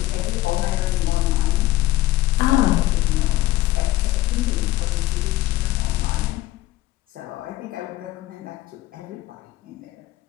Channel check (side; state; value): right; quieter; 16.4 dB